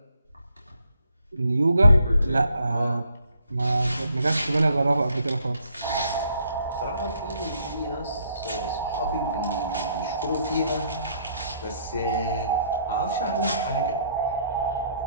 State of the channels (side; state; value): both; inverted; correlation -0.68